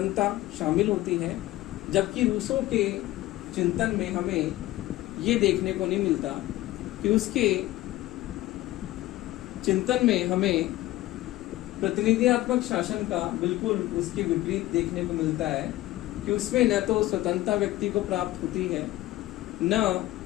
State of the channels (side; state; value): right; quieter; 16.4 dB